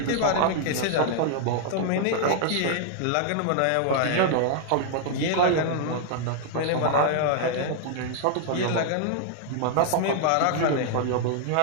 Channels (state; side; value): different; both; correlation 0.00